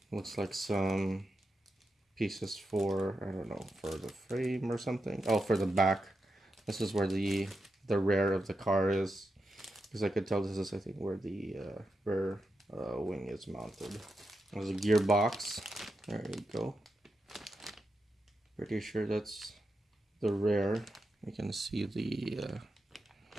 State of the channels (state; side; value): normal; both; correlation 0.87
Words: Looks like some pieces for, I don't know, for the frame or something. Oh, for the back. This is where the rear of the car is, because I could tell this is, I think, where the rear wing is mounted. There's a gearbox. There you go. Pretty sure that's the rear. You can see the